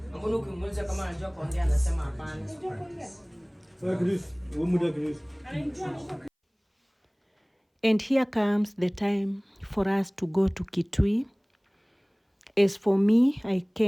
Mbona ukimuuliza kama anajua kuongea anasema hapana. And here comes the time for us to go to Kitui. As for me, I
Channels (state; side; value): identical; both; correlation 1.00